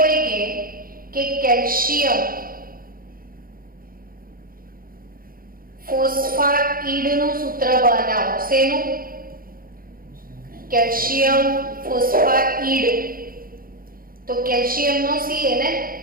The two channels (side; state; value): left; late; 0.42 ms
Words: કે કેલ્શિયમ ફોસ્ફાઇડનું સૂત્ર બનાવો શેનું કેલ્શિયમ ફોસ્ફાઇડ તો કેલ્શિયમનો C